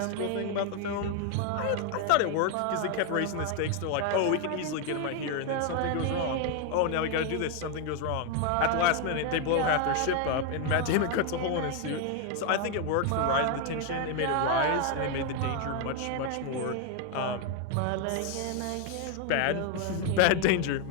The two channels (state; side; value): different; both; correlation 0.01